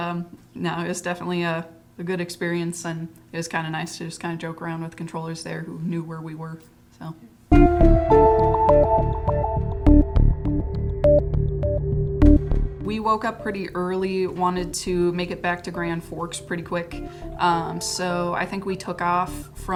no, it was definitely a good experience. And it was kind of nice to just kind of joke around with controllers there who knew where we were. So. We woke up pretty early, wanted to make it back to Grand Forks pretty quick. So I think we took off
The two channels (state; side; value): identical; both; correlation 1.00